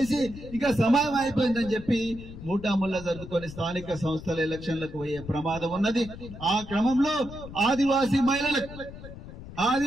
ఇక సమయం అయిపోయిందని చెప్పి మూటాముల్లా జరుపుకొని స్థానిక సంస్థల ఎలక్షన్లకు పోయే ప్రమాదం ఉన్నది. ఆ క్రమంలో ఆదివాసీ మహిళలకు,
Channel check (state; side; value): noise; left; rumble, 14 dB below the sound